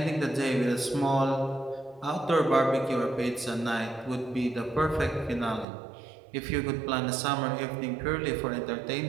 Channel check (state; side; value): drops out; left; at 5.7 s